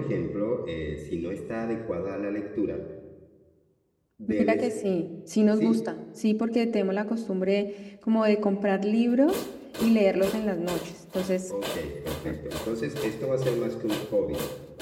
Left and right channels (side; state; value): both; identical; correlation 1.00